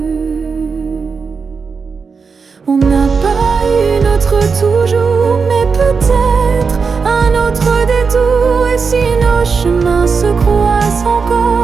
On n'a pas eu notre toujours, mais peut-être un autre détour. Et si nos chemins se croisent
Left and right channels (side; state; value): left; quieter; 5.3 dB